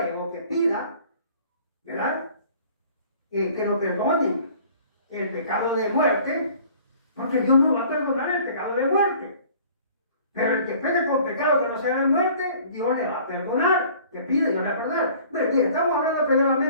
o que pida, ¿verdad? Que lo perdonen el pecado de muerte, porque Dios no va a perdonar el pecado de muerte. Pero el que peca con pecado que no sea de muerte, Dios le va a perdonar, que pide, Dios le va a perdonar. Pero bien, estamos hablando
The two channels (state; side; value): inverted; both; correlation -0.51